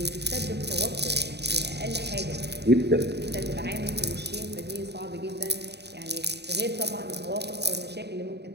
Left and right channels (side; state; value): left; late; 0.49 ms